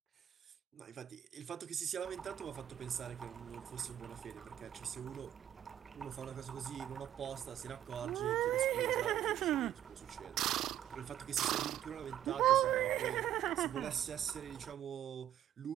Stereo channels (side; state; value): left; quieter; 11.3 dB